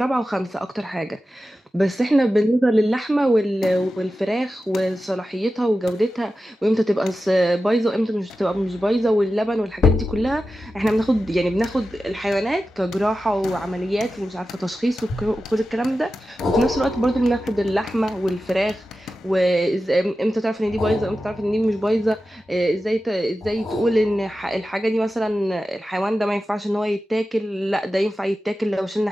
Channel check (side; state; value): both; normal; correlation 0.93